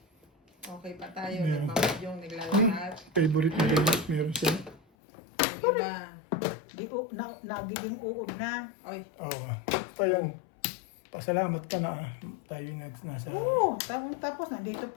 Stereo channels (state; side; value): drops out; right; at 4.8 s